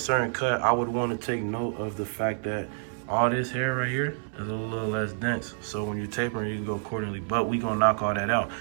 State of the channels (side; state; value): left; silent; 59 dB below the other